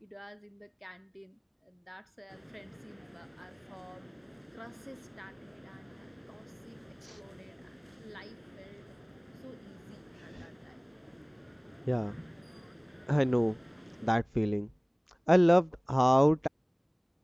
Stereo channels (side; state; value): both; identical; correlation 1.00